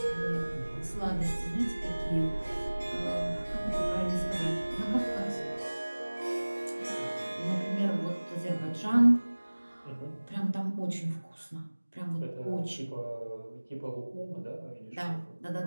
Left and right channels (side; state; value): both; inverted; correlation -1.00